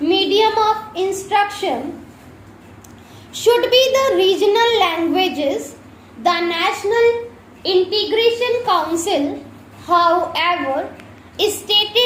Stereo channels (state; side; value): identical; both; correlation 1.00